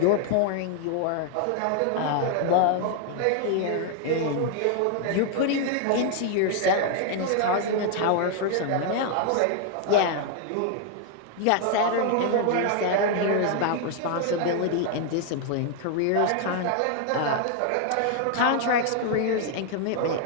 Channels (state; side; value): different; both; correlation 0.00